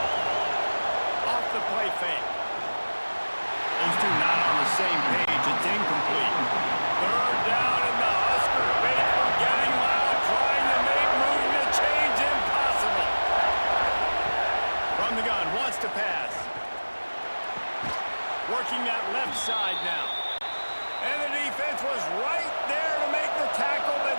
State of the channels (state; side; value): inverted; both; correlation -1.00